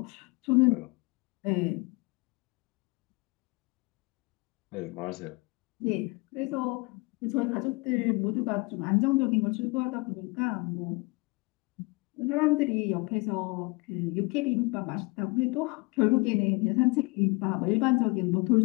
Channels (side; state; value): right; quieter; 26.6 dB